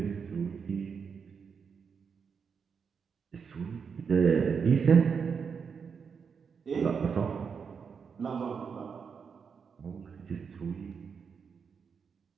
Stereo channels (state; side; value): quieter; left; 6.2 dB